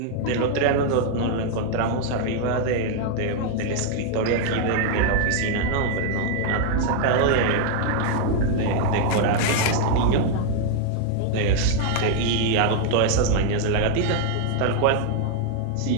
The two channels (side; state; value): both; different; correlation 0.00